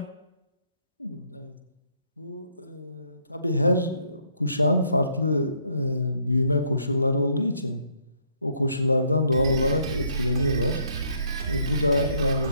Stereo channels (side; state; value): both; inverted; correlation -0.70